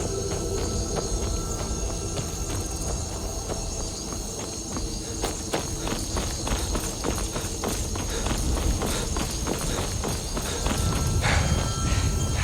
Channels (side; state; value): both; identical; correlation 1.00